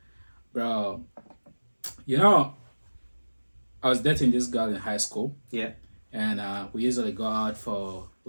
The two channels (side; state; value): both; inverted; correlation -1.00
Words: Bro, you know, I was dating this girl in high school. Yeah. And we usually go out for